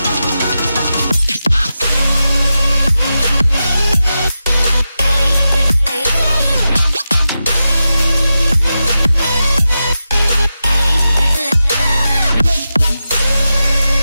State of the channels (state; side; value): inverted; both; correlation -0.91